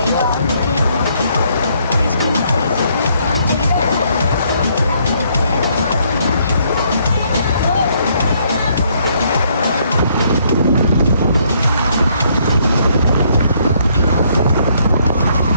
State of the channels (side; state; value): both; inverted; correlation -0.69